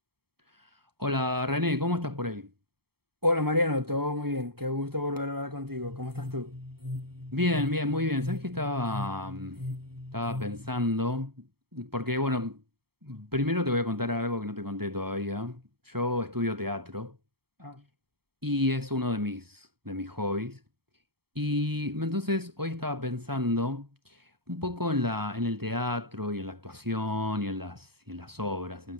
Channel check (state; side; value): late; left; 0.96 ms